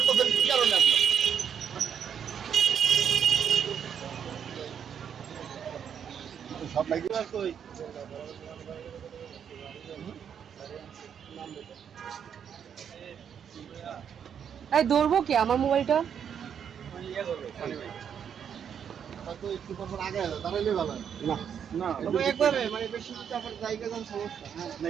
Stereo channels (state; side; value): quieter; left; 8.1 dB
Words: এই ধরবো কি আমার মোবাইলটা?